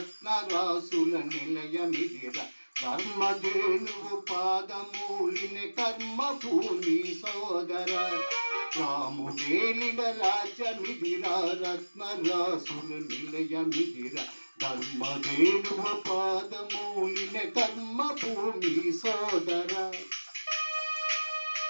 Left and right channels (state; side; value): inverted; both; correlation -1.00